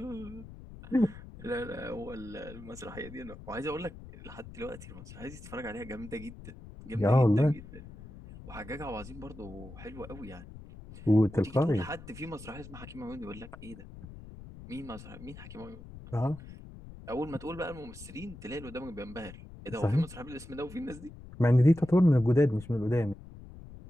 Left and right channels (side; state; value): left; noise; rumble, 15 dB below the sound